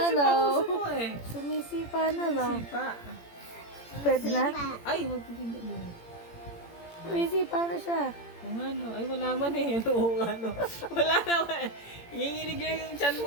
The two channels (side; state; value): right; late; 17 ms